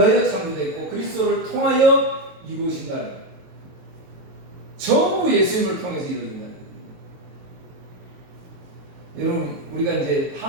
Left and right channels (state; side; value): late; left; 23 ms